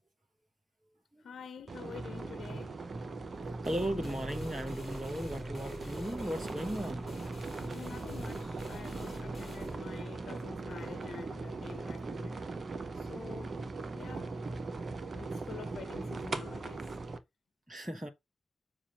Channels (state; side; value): normal; both; correlation 0.90